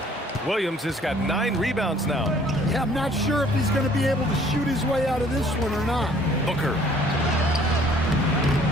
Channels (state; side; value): normal; both; correlation 0.57